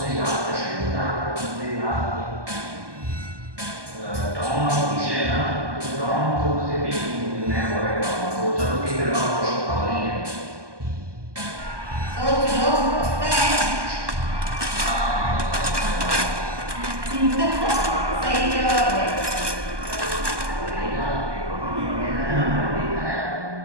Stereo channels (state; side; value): late; left; 1.2 ms